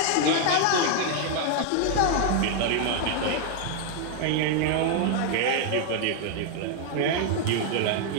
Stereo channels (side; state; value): both; different; correlation 0.00